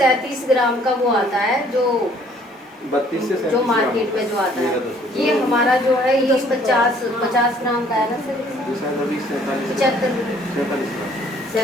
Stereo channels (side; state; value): both; normal; correlation 0.59